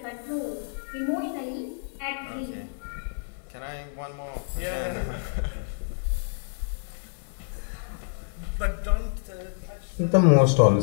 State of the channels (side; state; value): right; silent; digital silence